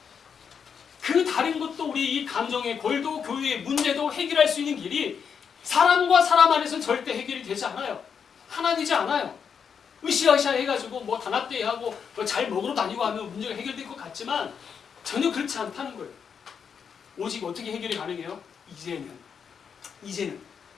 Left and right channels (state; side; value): quieter; right; 6.8 dB